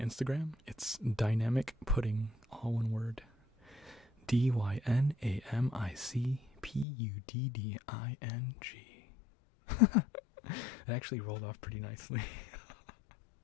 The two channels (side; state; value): right; drops out; at 6.9 s